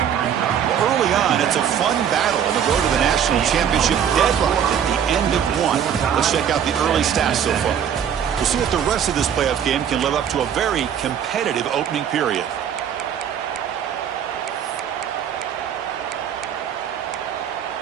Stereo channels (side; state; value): left; quieter; 8.7 dB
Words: Early on, it's a fun battle on the road to the national championship deadline at the end of one. Let's check out the early stats so far. We'll see if the rest of this playoff game can live up to a very competitive opening period.